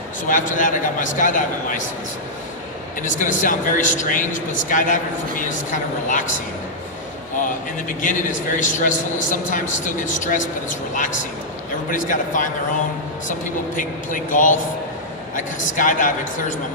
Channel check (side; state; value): both; normal; correlation -0.08